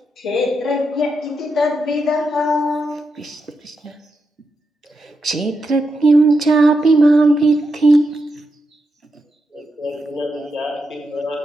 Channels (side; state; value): both; normal; correlation 0.85